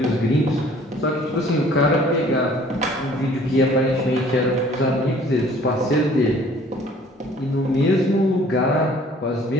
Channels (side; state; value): both; normal; correlation 0.54